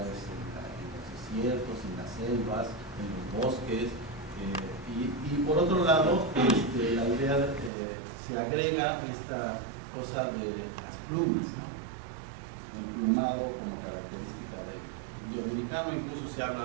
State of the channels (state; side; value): drops out; left; at 7.7 s